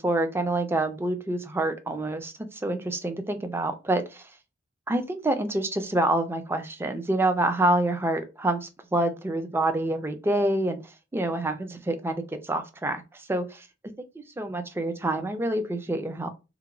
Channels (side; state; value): both; normal; correlation 0.67